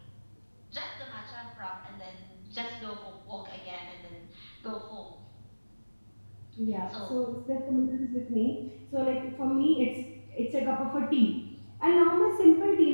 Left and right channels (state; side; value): inverted; both; correlation -1.00